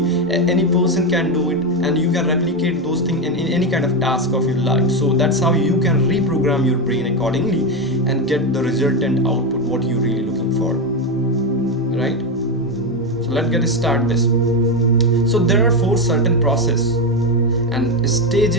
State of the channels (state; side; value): normal; both; correlation 0.10